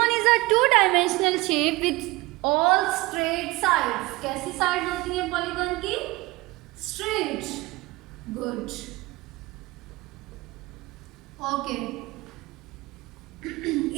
is a two-dimensional shape with all straight sides. कैसी sides होती हैं polygon की? Straight. Good. Okay.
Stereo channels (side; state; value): left; quieter; 21.3 dB